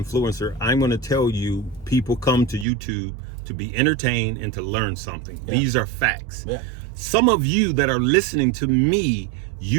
I'm going to tell you, people come to YouTube to be entertained and to learn something. These are facts. Some of you that are listening to me,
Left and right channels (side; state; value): left; drops out; at 2.7 s